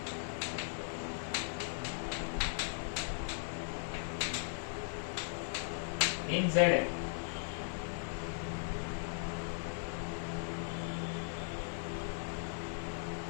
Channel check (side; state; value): right; silent; 52 dB below the other